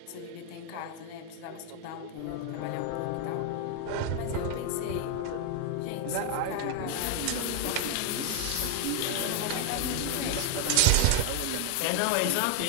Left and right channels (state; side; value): different; both; correlation 0.00